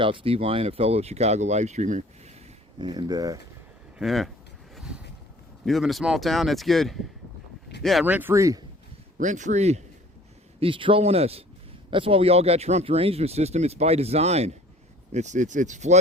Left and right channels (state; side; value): normal; both; correlation 0.51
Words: out Steve Lyon, a fellow Chicago live streamer. And yeah, you live in a small town, that's good. Yeah, rent free. He's trolling us. That's why we all got Trump derangement system. It's by design. It's